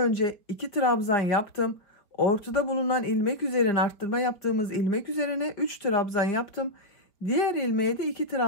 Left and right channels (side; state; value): right; late; 4.6 ms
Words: 2 trabzan yaptım. Ortada bulunan ilmek üzerine arttırma yaptığımız ilmek üzerine 3 trabzan yaptım. Diğer ilmeğe de 2